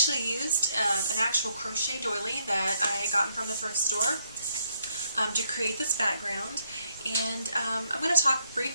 used an actual crochet doily that I had gotten from the thrift store to create this background. And I'm going to talk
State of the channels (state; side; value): inverted; both; correlation -0.74